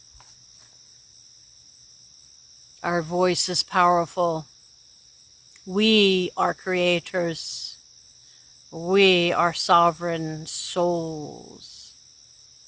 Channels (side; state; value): both; identical; correlation 1.00